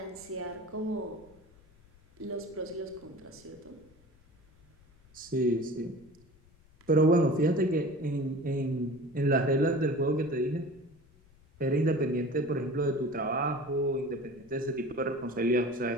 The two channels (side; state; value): left; noise; rumble, 28 dB below the sound